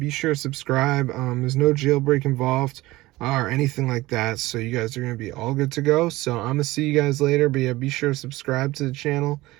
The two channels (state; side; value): quieter; left; 18.8 dB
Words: sure to subscribe. There's no jailbreak involved or anything like that. So you guys are gonna be all good to go. So I'm gonna see you guys later. But yeah, be sure to subscribe to the channel.